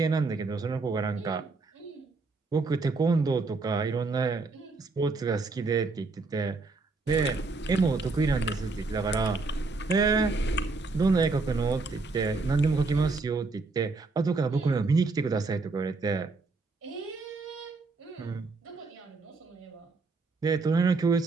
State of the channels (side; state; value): left; quieter; 3.8 dB